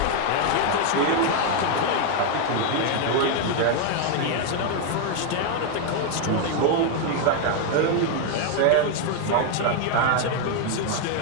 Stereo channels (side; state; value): both; different; correlation 0.01